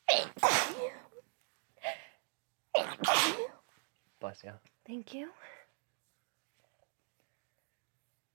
Bless you. Thank you.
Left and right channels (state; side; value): silent; left; 51 dB below the other